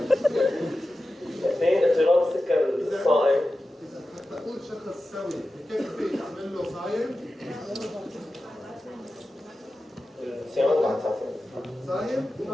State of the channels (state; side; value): normal; both; correlation 0.93